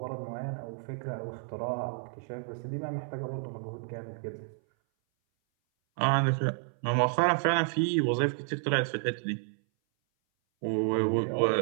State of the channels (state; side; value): silent; left; 57 dB below the other